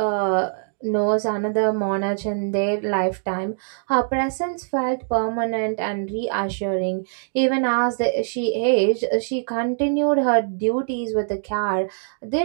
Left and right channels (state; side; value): silent; left; digital silence